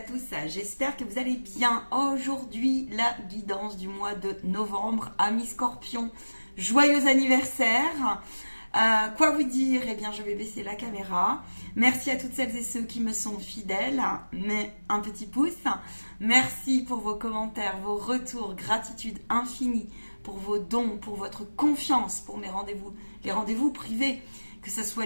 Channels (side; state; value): both; inverted; correlation -1.00